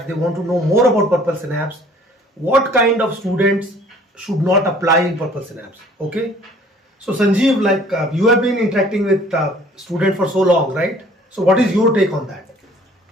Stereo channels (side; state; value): both; normal; correlation 0.54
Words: they want to know more about Purple Synapse, what kind of students should not apply in Purple Synapse. Okay, so Sanjeev, like you have been interacting with students for so long, right? So what is your take on that?